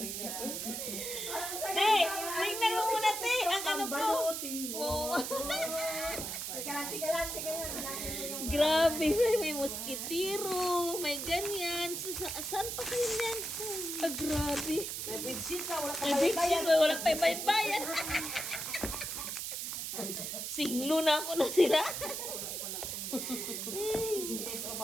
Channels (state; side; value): noise; right; hiss, 4 dB below the sound